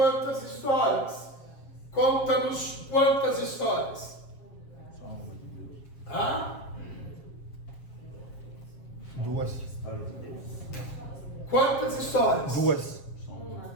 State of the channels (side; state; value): right; late; 7.4 ms